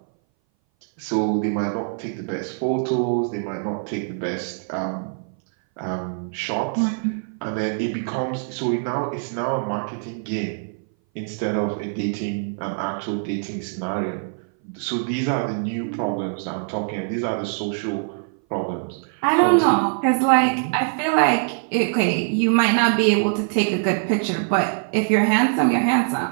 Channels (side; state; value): left; silent; 59 dB below the other